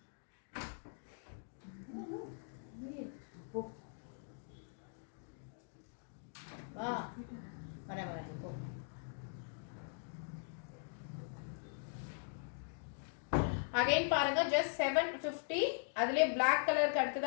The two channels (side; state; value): right; silent; digital silence